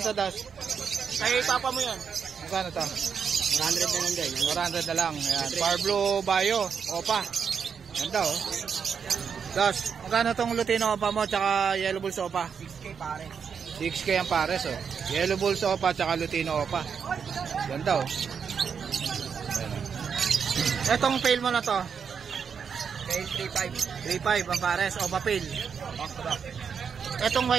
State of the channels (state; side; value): quieter; left; 6.7 dB